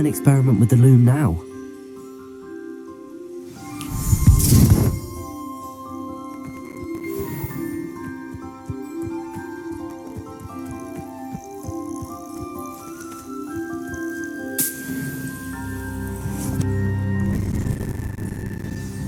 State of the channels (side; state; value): both; identical; correlation 1.00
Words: experiment with the loom now.